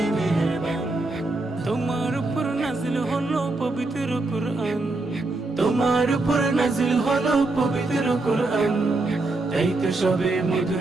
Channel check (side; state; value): left; quieter; 3.1 dB